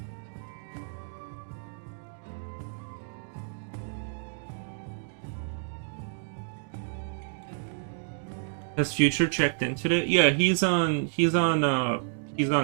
Has Future checked in today? Yeah, he's on the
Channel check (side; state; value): left; silent; digital silence